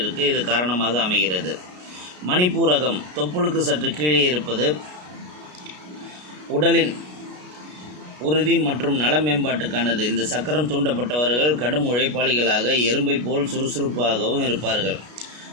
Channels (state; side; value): late; left; 33 ms